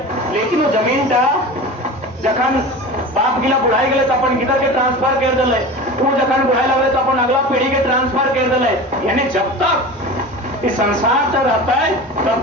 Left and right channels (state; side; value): normal; both; correlation 0.32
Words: लेकिन वो जमीन टा जखन बाप गिला बुढ़ाई गए तो अपन गिदर के ट्रांसफर कर दिले वो जखन बुढ़ाई लगे तो अपन अगला पीढ़ी के ट्रांसफर कर दिले यानी जब तक इस संसार तक रहता है